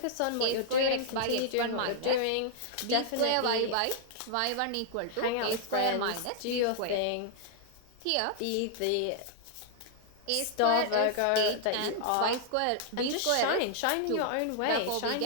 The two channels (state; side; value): different; both; correlation -0.01